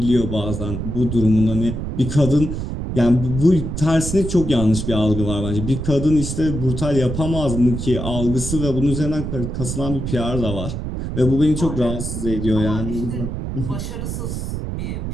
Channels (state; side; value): noise; right; rumble, 4 dB below the sound